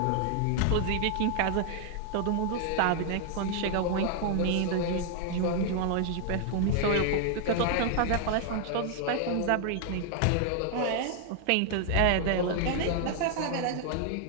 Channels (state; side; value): different; both; correlation 0.00